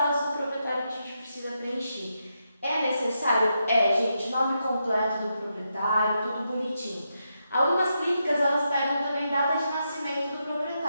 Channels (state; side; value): inverted; both; correlation -0.84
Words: do proprietário que a gente precisa preencher. É necessário? Gente, nome completo do proprietário, tudo bonitinho. Algumas clínicas, elas pegam também data de nascimento do